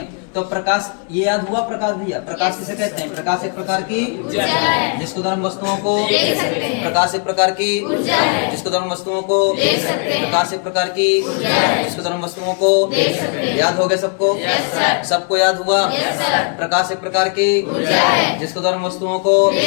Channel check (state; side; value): quieter; right; 38.4 dB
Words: तो प्रकाश ये याद हुआ? प्रकाश भैया प्रकाश किसे कहते हैं? प्रकाश एक प्रकार की जिसके द्वारा हम वस्तुओं को प्रकाश एक प्रकार की जिसके द्वारा हम वस्तुओं को प्रकाश एक प्रकार की जिसके द्वारा हम वस्तुओं को याद हो गया सबको? सबको याद हुआ? प्रकाश एक प्रकार की जिसके द्वारा हम वस्तुओं को